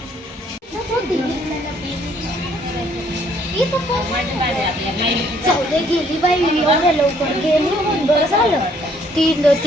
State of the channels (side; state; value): both; normal; correlation 0.64